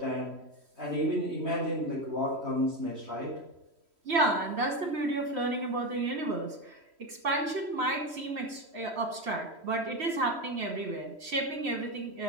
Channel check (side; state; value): left; late; 3.1 ms